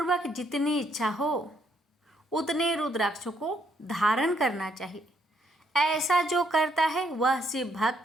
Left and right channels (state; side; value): normal; both; correlation 0.72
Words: जितनी इच्छा हो उतने रुद्राक्षों को धारण करना चाहिए। ऐसा जो करता है वह शिव